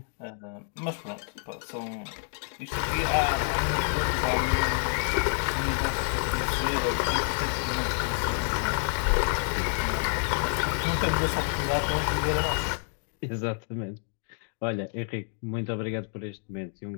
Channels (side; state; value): right; silent; 59 dB below the other